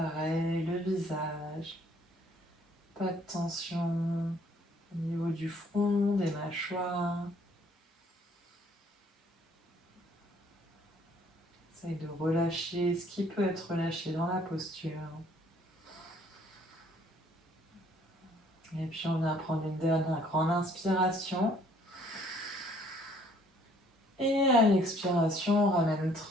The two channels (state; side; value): normal; both; correlation 0.61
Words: le visage. Pas de tension au niveau du front, des mâchoires. Essaye de relâcher ce qui peut être relâché dans la posture. Et puis on va prendre une dernière grande inspiration. Et à l'expiration, on ramène